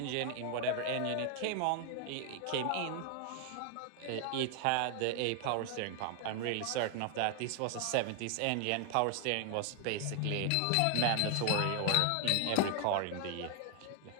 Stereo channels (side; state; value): both; different; correlation 0.00